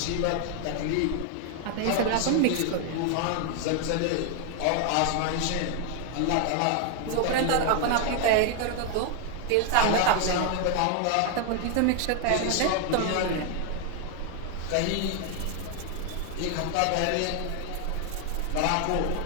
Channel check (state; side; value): different; both; correlation 0.00